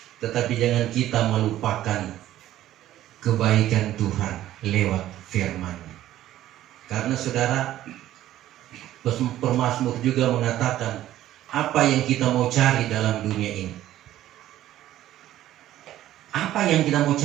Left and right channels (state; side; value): quieter; left; 13.4 dB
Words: tetapi jangan kita melupakan kebaikan Tuhan lewat firman-Nya. Karena saudara, pemazmur juga mengatakan, apa yang kita mau cari dalam dunia ini? Apa yang kita mau